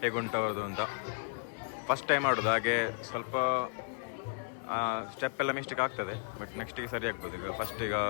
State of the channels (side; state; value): right; silent; 55 dB below the other